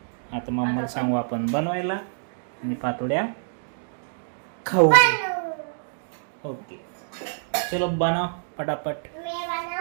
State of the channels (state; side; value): silent; left; digital silence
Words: आता मम्माला सांगू आपण बनवायला आणि पातोड्या खाऊ ओके चलो बनाओ फटाफट